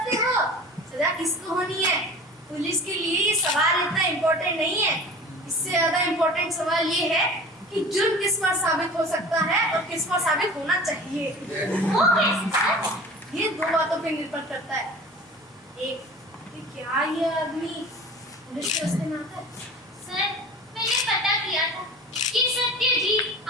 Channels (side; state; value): both; normal; correlation 0.39